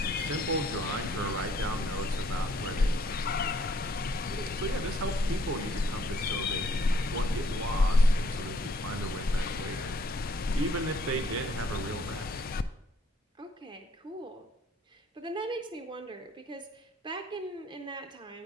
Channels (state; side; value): normal; both; correlation 0.64